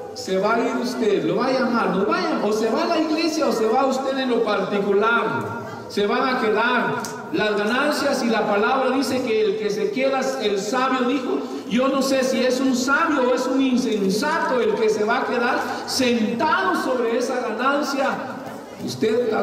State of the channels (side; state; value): both; identical; correlation 1.00